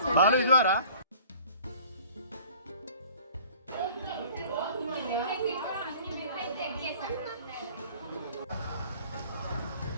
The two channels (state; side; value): inverted; both; correlation -0.49